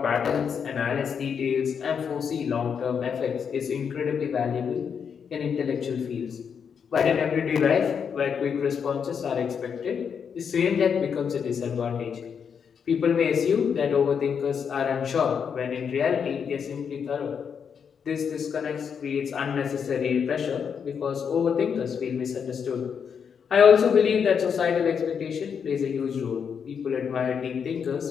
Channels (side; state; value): right; quieter; 6.9 dB